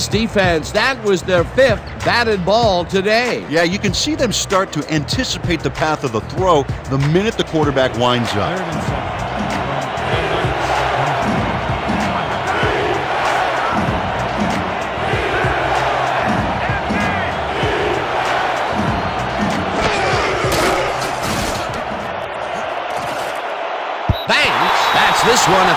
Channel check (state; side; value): identical; both; correlation 1.00